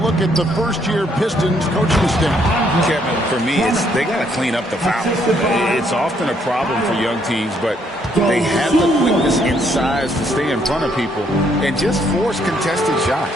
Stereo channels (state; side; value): normal; both; correlation 0.70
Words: at the first-year Pistons coaching staff? Kevin, for me, they got to clean up the fouls. It's often a problem for young teams, but they have the quickness and size to stay in front of people and just force contested